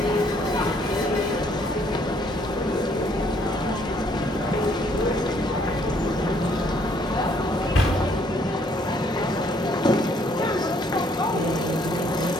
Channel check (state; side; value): normal; both; correlation 0.65